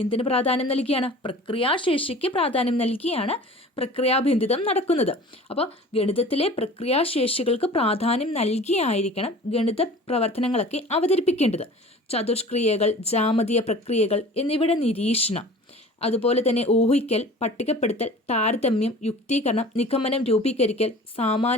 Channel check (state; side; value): normal; both; correlation 0.42